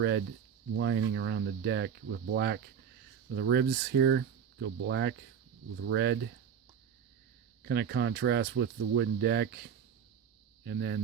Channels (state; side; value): quieter; left; 7.8 dB